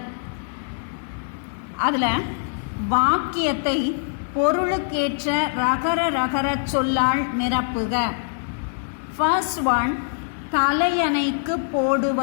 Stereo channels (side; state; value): right; silent; digital silence